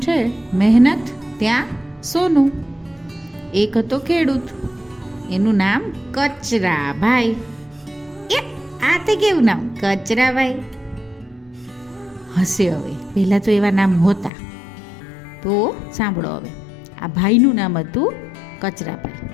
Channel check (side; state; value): right; drops out; at 14.3 s